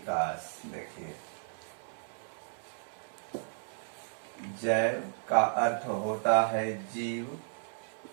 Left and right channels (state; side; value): silent; left; 55 dB below the other